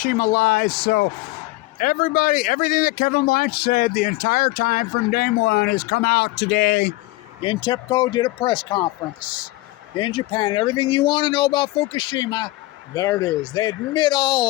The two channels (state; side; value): quieter; right; 19.2 dB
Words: lies. So everything that Kevin Blanch said the entire time from day one has come out today. In TEPCO did a press conference in Japan. Everything you want to know about Fukushima, there it is. They admit